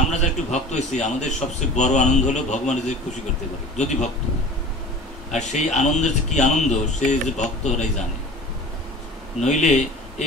যারা একটু ভক্ত হয়েছি, আমাদের সবচেয়ে বড় আনন্দ হলো ভগবানের যে খুশি করতে পারে যদি ভক্ত। আর সেই আনন্দের যে কি আনন্দ, সে যে ভক্তরাই জানে। নইলে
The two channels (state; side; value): normal; both; correlation 0.40